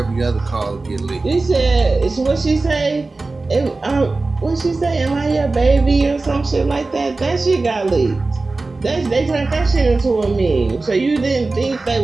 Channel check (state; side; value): quieter; left; 3.5 dB